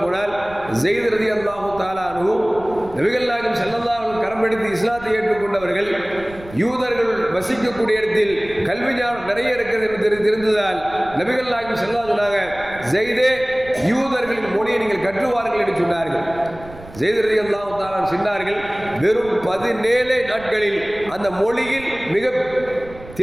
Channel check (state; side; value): noise; right; rumble, 18 dB below the sound